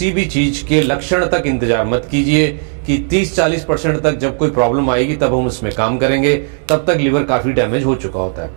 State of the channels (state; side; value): silent; left; 70 dB below the other